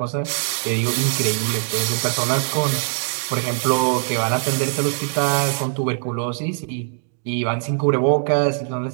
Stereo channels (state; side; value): silent; left; 65 dB below the other